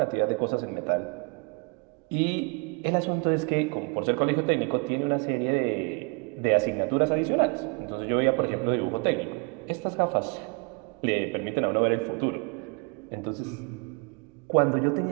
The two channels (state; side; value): quieter; left; 33.6 dB